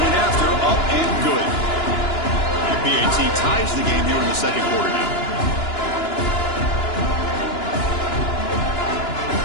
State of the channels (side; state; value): right; late; 2.9 ms